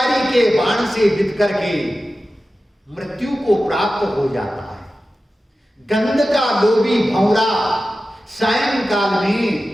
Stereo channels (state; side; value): normal; both; correlation 0.94